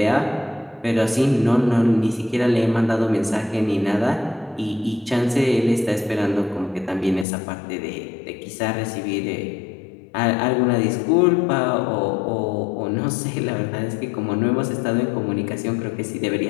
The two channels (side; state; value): right; drops out; at 7.2 s